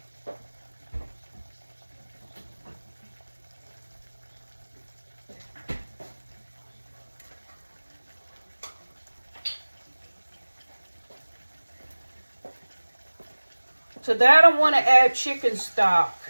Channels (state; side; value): inverted; both; correlation -1.00